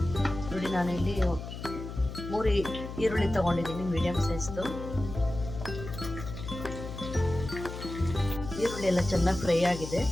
ನೋಡಿ, ನಾನಿಲ್ಲಿ 3 ಈರುಳ್ಳಿ ತೊಗೊಂಡಿದ್ದೀನಿ, ಮೀಡಿಯಮ್ ಸೈಜ್ದು. ಈರುಳ್ಳಿ ಎಲ್ಲ ಚೆನ್ನಾಗಿ ಫ್ರೈ ಆಗಿದೆ.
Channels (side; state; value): left; noise; hum, 9 dB below the sound